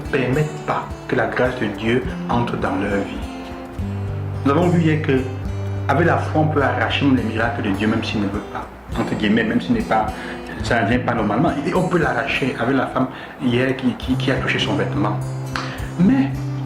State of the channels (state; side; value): identical; both; correlation 1.00